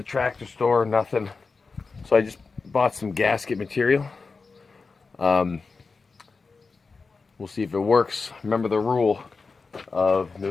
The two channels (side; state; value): right; quieter; 4.4 dB